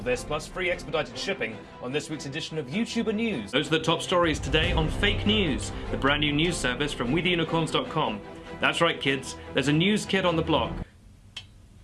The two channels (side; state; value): both; identical; correlation 1.00